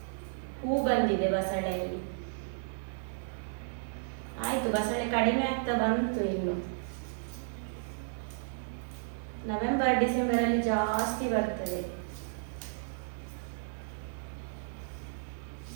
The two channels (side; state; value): left; silent; digital silence